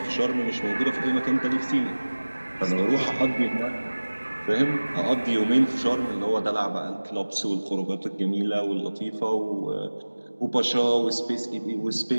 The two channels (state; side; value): inverted; both; correlation -1.00